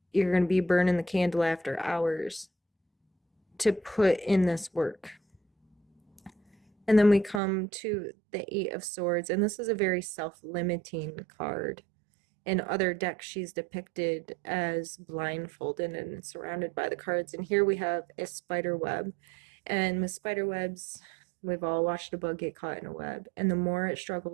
you're going to be burning the candle after hours to put in this work. And then we come to the Eight of Swords, and this is a very self-limiting card. In other decks, she's depicted as blindfolded and surrounded by the cards. And here we have a spider web. And with spider webs, we've all watched a bug get caught in a web. And the more it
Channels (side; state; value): left; drops out; at 7.4 s